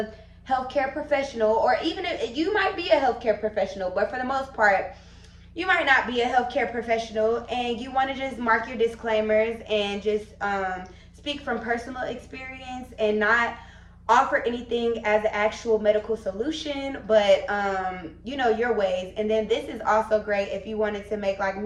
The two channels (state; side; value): identical; both; correlation 1.00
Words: healthcare professional, or even if you might be a healthcare professional, but for the most part, you might not be a healthcare professional, and you want to just mark your disclaimers and just speak from personal experience and not offer anything as an actual medical solution, but your ways. And then this is also great if you wanted to make like